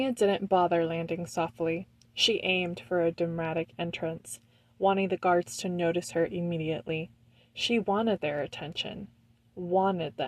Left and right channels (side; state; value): both; identical; correlation 1.00